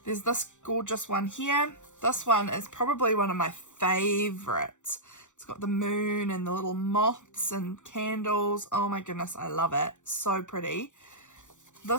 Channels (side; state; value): right; late; 0.85 ms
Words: there's this gorgeous one here. This one is probably one of my favorites. It's got the moon and the little moths and candles. Oh my goodness, I love it. So pretty.